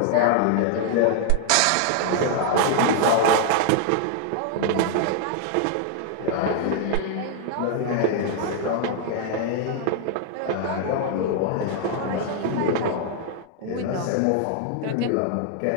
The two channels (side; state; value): both; different; correlation 0.00